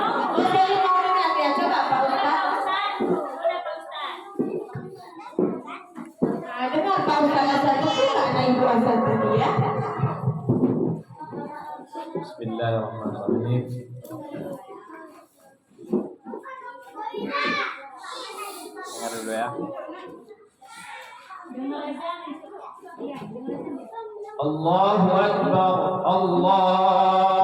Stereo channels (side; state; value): both; identical; correlation 1.00